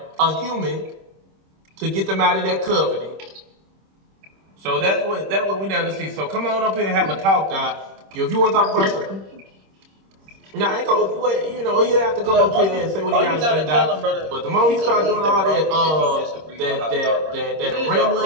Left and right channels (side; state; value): left; late; 26 ms